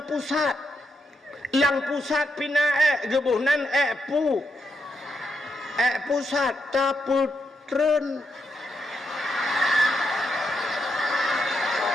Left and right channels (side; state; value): both; normal; correlation 0.82